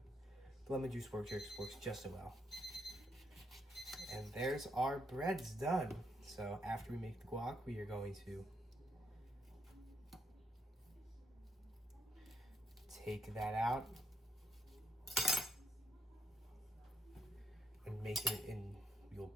The lemon juice works just as well. And there's our breads done. So after we make the guac, we are going to take that out and make it in. You'll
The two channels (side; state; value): both; normal; correlation 0.77